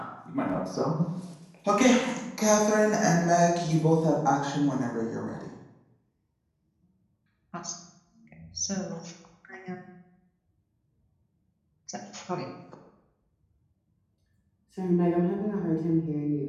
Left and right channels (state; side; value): identical; both; correlation 1.00